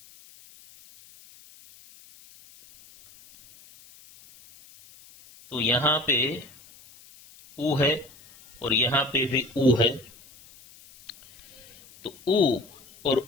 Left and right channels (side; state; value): left; noise; hiss, 24 dB below the sound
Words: तो यहां पे उ है और यहां पे भी उ है, तो उ और